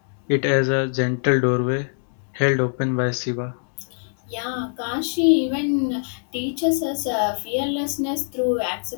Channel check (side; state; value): right; silent; 63 dB below the other